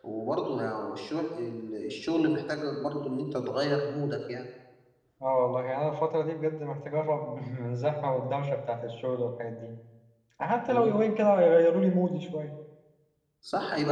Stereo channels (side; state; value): both; identical; correlation 1.00